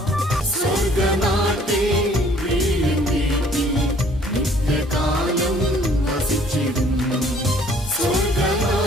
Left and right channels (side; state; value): both; normal; correlation 0.58